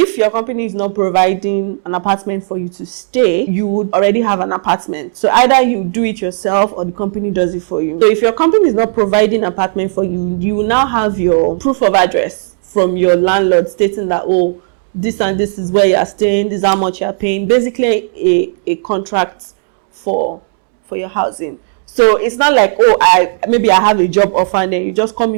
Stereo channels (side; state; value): left; silent; digital silence